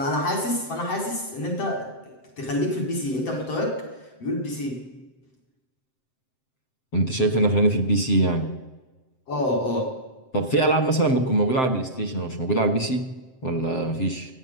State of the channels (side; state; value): right; late; 7.7 ms